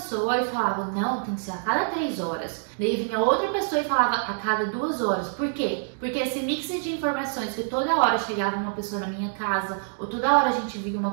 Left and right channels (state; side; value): silent; left; digital silence